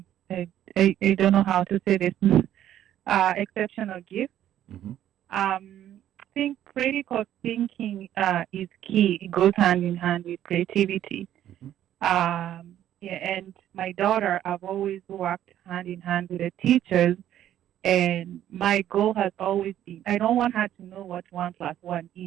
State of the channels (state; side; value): quieter; left; 11.6 dB